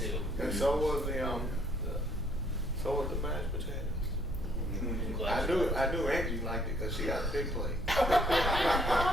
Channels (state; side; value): normal; both; correlation 0.65